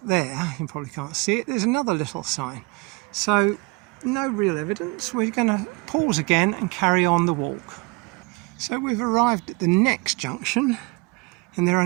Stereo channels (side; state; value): left; quieter; 26.8 dB